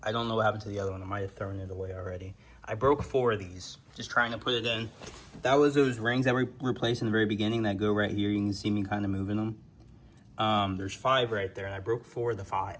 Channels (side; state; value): both; identical; correlation 1.00